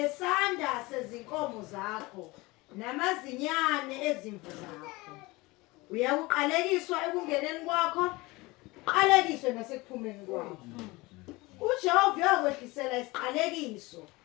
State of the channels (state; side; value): quieter; right; 22.5 dB